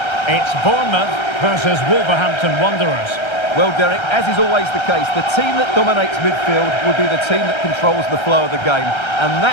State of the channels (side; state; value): right; late; 1.3 ms